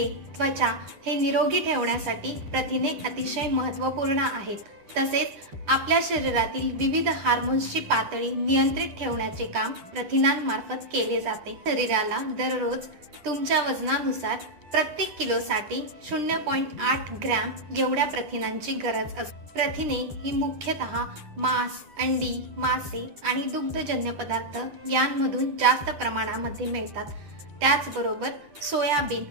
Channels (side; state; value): left; late; 10 ms